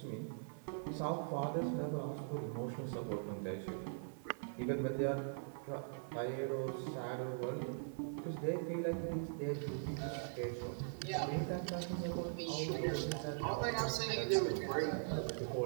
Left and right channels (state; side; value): silent; left; 50 dB below the other